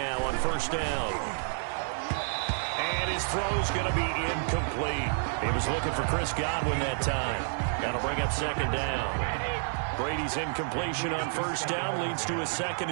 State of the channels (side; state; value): left; silent; digital silence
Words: on first down. And his throw's going to be incomplete. He was looking for Chris Godwin that time. That'll bring up 2nd down. Brady's incompletion on first down leads to a 2nd